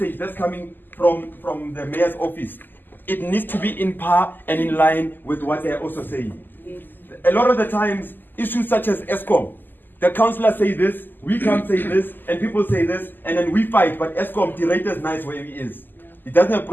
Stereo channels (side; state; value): right; late; 0.090 ms